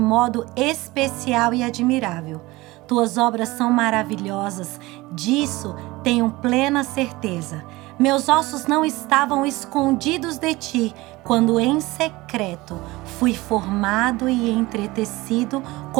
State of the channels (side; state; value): left; quieter; 20.6 dB